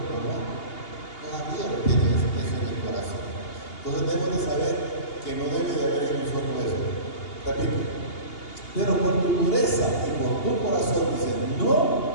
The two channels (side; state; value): right; late; 2.8 ms